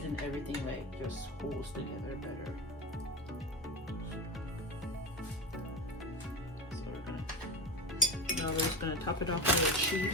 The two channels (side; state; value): both; normal; correlation 0.23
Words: and everything like just holds together better. Now we're just gonna top it off with the